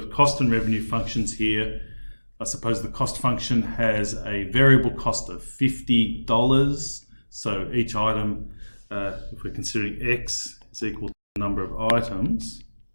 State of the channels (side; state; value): both; inverted; correlation -1.00